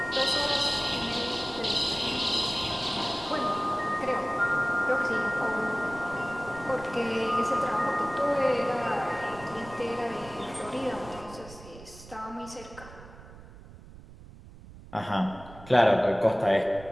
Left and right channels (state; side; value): noise; right; rumble, 18 dB below the sound